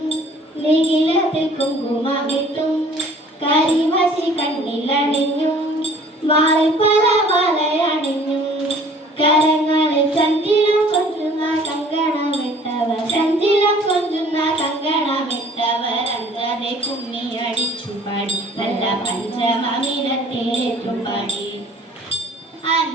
നിഖിലത്തിൽ കുങ്കുമമിട്ടും കരിമശി കണ്ണിലണിഞ്ഞും വാളിൽ പല വലയണിഞ്ഞും കരങ്ങളിൽ ചഞ്ചിലം കൊഞ്ചുന്ന കങ്കണമിട്ടവർ ചഞ്ചിലം കൊഞ്ചുന്ന കങ്കണമിട്ടവർ അഞ്ചാതെ കുമ്മിയടിച്ചു പാടി നല്ല പഞ്ചമമിനത്തിലേറ്റു പാടി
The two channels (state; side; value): normal; both; correlation 0.52